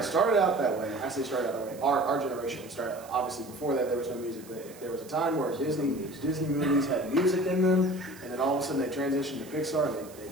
started out that way. I say started out that way. Our generation started, obviously before that there was no music, but there was a time where Disney movies had music in them, and then all of a sudden they transitioned to Pixar, and they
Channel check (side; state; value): right; noise; hiss, 21 dB below the sound